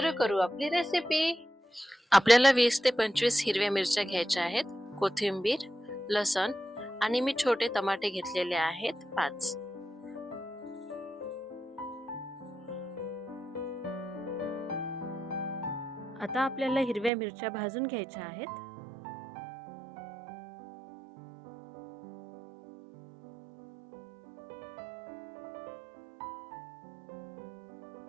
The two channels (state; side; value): drops out; left; at 17.1 s